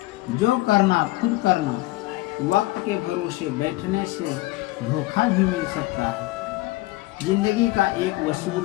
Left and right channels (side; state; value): right; quieter; 19.1 dB